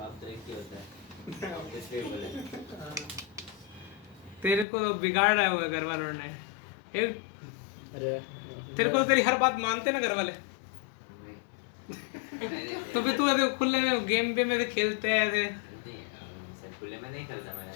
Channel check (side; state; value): right; drops out; at 4.7 s